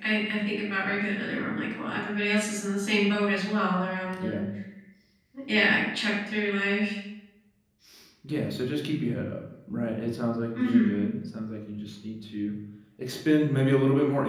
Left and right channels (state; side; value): identical; both; correlation 1.00